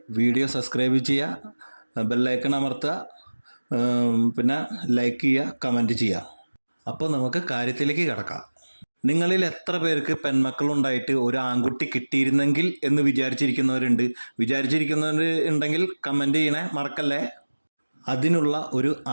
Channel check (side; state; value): both; inverted; correlation -1.00